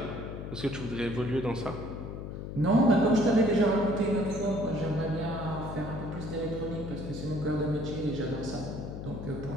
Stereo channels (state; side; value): noise; left; hum, 7 dB below the sound